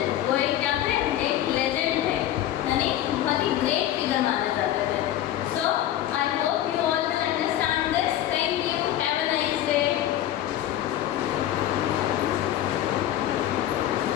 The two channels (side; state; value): right; quieter; 12.5 dB